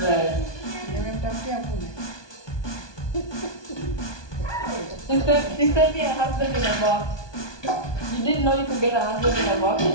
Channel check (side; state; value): right; late; 1.2 ms